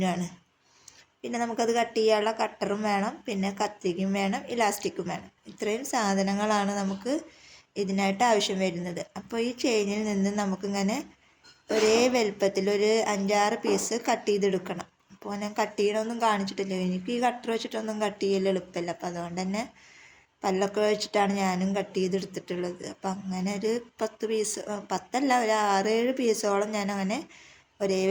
പിന്നെ നമുക്കത് കട്ട് ചെയ്യാനുള്ള കട്ടറും വേണം, പിന്നെ കത്തിക്കും വേണം, ഇലാസ്റ്റിക്കും വേണം. ഇത്രയും സാധനങ്ങളാണ് നമുക്ക് ഇതിനായിട്ട് ആവശ്യം വരുന്നത്. അപ്പോൾ ഈ ചെയിനിൽ നിന്ന് നമുക്കിങ്ങനെ ഒരേ വലുപ്പത്തിൽ ഒരു 5-6 പീസ് കട്ട് ചെയ്തെടുക്കണം. അപ്പോൾ ഞാൻ കട്ട് ചെയ്യണമൊന്നും കാണിച്ചിട്ടില്ല, എനിക്ക് ഈ കട്ടർ വെച്ചിട്ടൊന്നും കട്ട് ചെയ്യൽ എളുപ്പമില്ല. അപ്പോൾ അതുകൊണ്ട് തന്നെ പല്ലൊക്കെ വെച്ചിട്ടാണ് ഞാനും കട്ട് ചെയ്തെടുത്തിട്ടുള്ളത്. അപ്പം അങ്ങനെ ഒരു 10 പീസ്, 10 ഒരു 6-7 പീസോളം ഞാൻ അങ്ങനെ ഒരേ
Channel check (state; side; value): identical; both; correlation 1.00